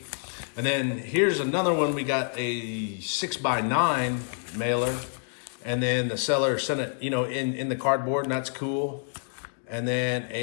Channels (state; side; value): silent; right; 60 dB below the other